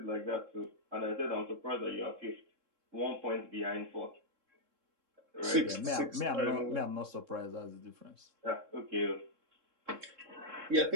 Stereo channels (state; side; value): late; left; 3.7 ms